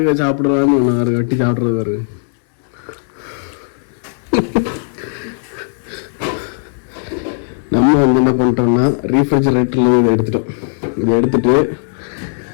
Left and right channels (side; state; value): right; silent; digital silence